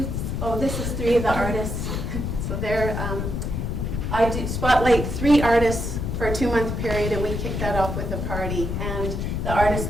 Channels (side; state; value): left; noise; rumble, 2 dB below the sound